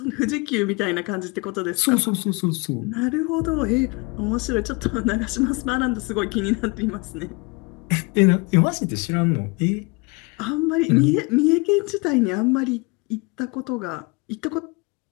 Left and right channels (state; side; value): quieter; right; 28.0 dB